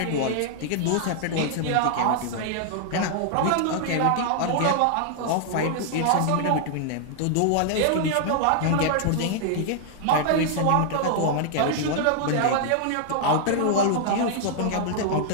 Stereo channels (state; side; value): different; both; correlation -0.01